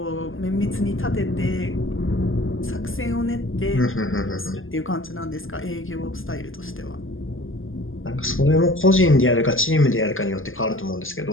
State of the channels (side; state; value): right; late; 0.59 ms